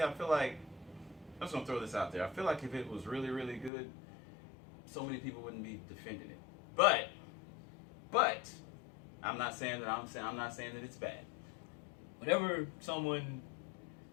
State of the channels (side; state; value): right; drops out; at 3.7 s